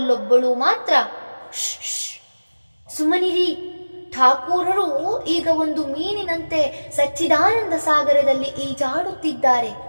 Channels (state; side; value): inverted; both; correlation -1.00